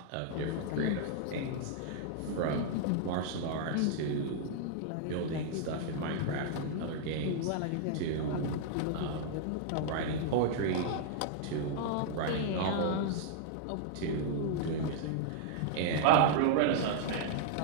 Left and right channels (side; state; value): both; different; correlation -0.01